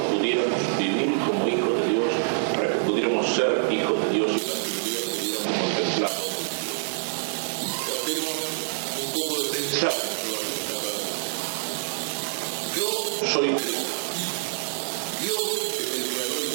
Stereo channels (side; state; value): left; silent; digital silence